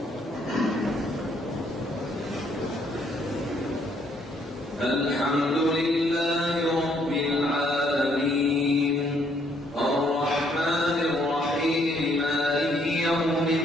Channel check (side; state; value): both; normal; correlation 0.68